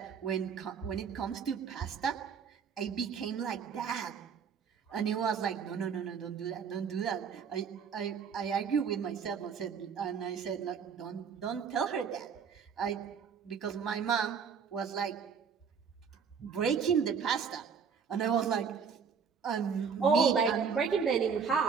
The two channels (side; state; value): left; quieter; 6.5 dB